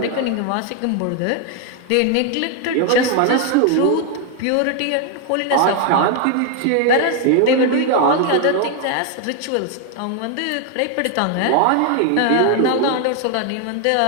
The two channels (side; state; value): both; different; correlation 0.00